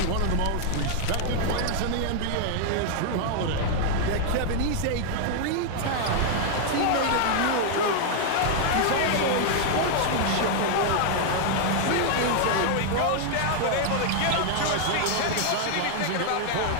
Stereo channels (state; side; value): different; both; correlation 0.00